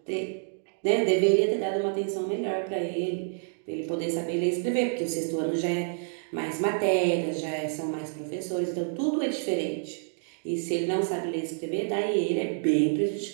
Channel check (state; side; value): silent; left; digital silence